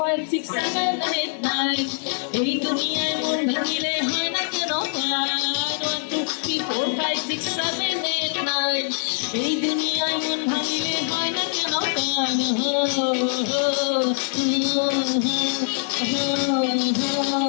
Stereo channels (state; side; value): silent; right; 56 dB below the other